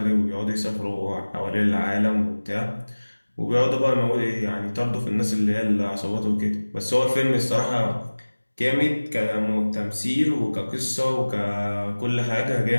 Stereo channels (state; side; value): inverted; both; correlation -1.00